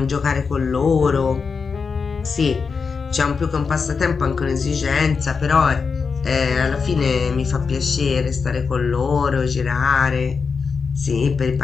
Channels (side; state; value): right; quieter; 5.3 dB